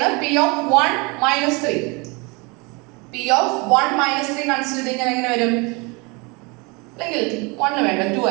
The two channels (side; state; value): left; quieter; 28.2 dB